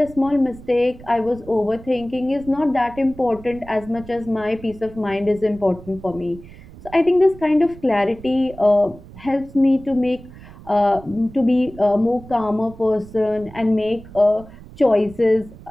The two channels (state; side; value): noise; right; rumble, 18 dB below the sound